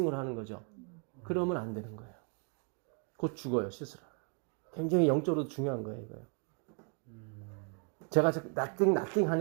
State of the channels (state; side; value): quieter; left; 38.5 dB